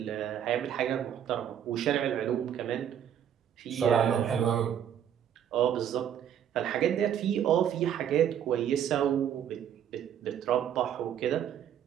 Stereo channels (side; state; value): left; quieter; 9.5 dB